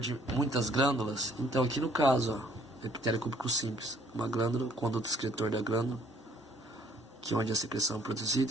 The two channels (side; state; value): both; normal; correlation 0.62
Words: muitas glândulas. Então aqui no caso, epitélio cúbico simples, uma glândula, conduto excretor da glândula, que é onde a secreção é